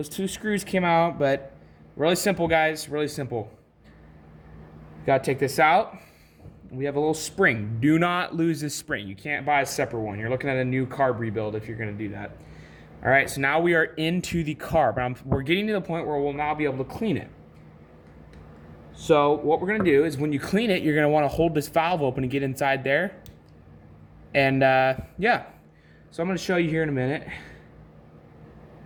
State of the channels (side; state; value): both; identical; correlation 1.00